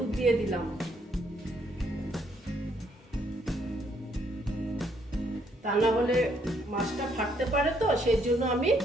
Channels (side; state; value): both; normal; correlation 0.70